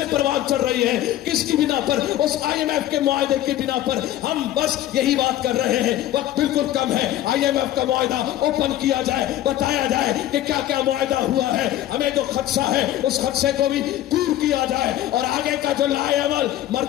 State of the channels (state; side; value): quieter; right; 13.3 dB